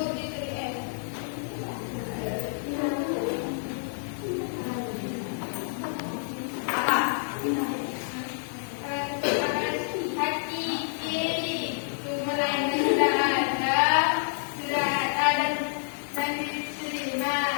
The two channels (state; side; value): silent; right; digital silence